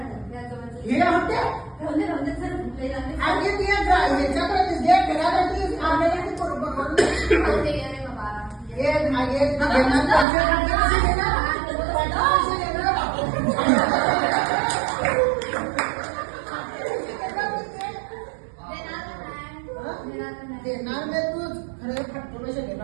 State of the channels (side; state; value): left; drops out; at 10.2 s